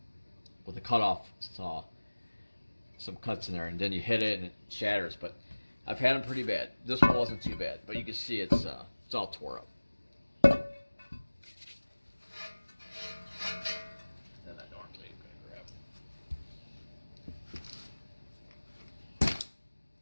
with a cutoff saw. Some cuts in there, and then you hit it and it shatters. But I've had them pretty bad. This one wasn't too bad, but you can see it's all tore up. And I normally am going to grab.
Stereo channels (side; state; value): both; inverted; correlation -1.00